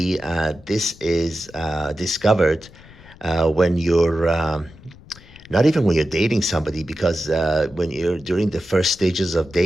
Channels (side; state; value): left; noise; rumble, 22 dB below the sound